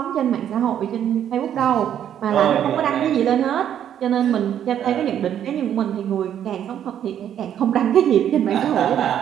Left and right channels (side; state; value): left; quieter; 10.0 dB